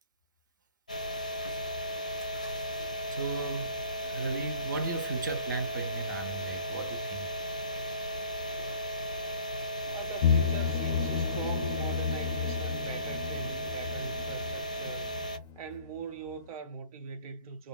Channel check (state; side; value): inverted; both; correlation -0.51